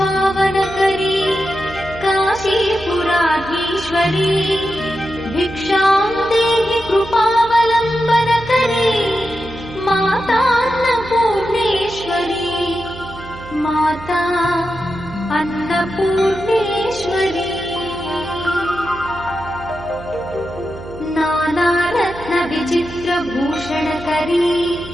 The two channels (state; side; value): noise; right; hum, 15 dB below the sound